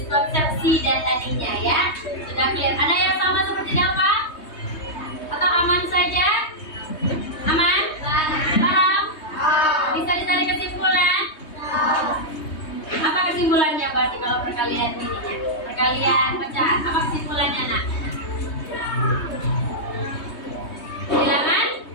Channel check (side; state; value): right; late; 3.2 ms